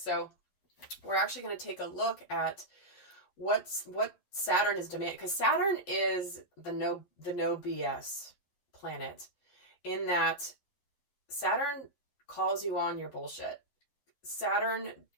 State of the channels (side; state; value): right; late; 11 ms